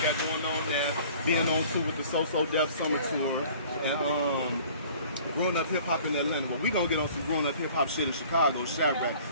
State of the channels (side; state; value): both; inverted; correlation -0.50